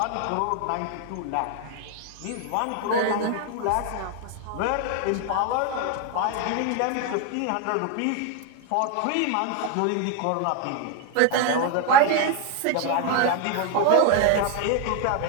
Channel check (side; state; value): both; different; correlation 0.01